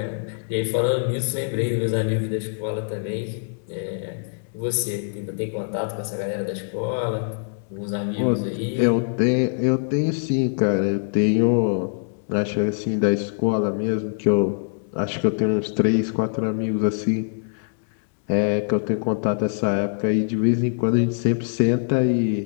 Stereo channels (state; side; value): silent; right; digital silence